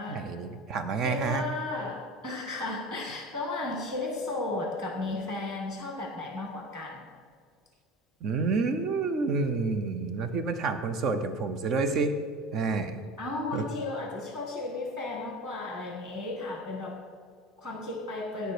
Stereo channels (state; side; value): normal; both; correlation 0.34